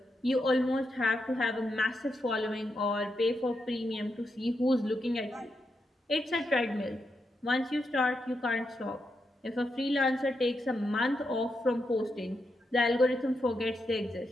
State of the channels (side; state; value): both; normal; correlation 0.84